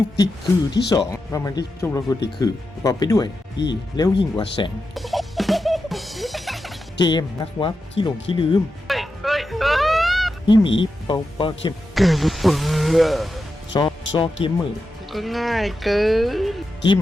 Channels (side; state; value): both; normal; correlation 0.89